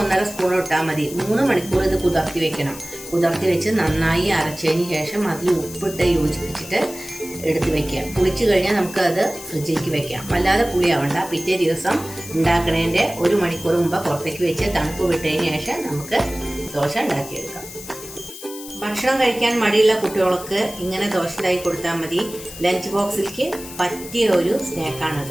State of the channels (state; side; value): noise; left; hiss, 13 dB below the sound